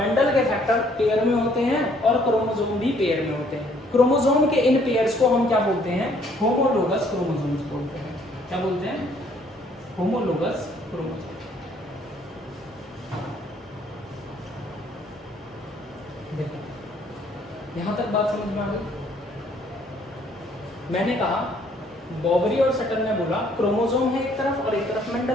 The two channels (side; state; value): both; normal; correlation 0.63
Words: के फैक्टर पेयर में होते हैं और क्रोमोसोम भी पेयर में होते हैं। क्रोमोसोम के इन पेयर्स को हम क्या बोलते हैं? होमोलोगस क्रोमोसोम्स बोलते हैं। क्या बोलते हैं? Homologous chromosome. देखो यहां तक बात समझ में आ गई। मैंने कहा बॉबरी और सटन ने बोला क्रोमोसोम है एक तरफ और एक तरफ